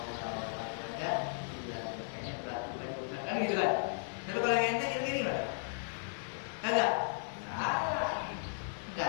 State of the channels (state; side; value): silent; right; 54 dB below the other